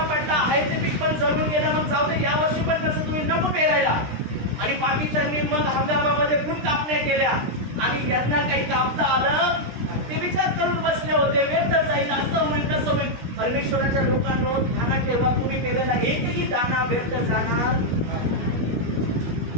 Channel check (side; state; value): left; late; 17 ms